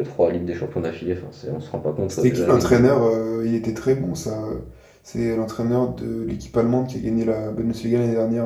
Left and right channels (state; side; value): identical; both; correlation 1.00